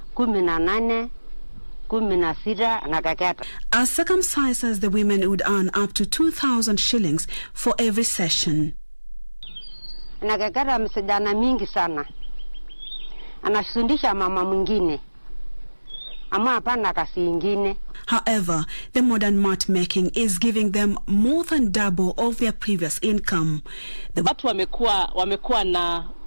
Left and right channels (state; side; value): inverted; both; correlation -1.00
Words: 18 16 na kaketa. As circumcisers, the women would earn up to 2,000 shillings for every session. Na kaketa msijana mingi sana. Anafundisha mama mwingine. Ama hapana kasi ingine. However, the modern mat making is giving them more than double of their previous income. Watu wamekuwa na